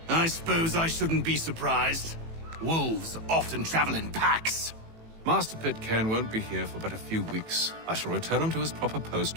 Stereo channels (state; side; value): late; left; 18 ms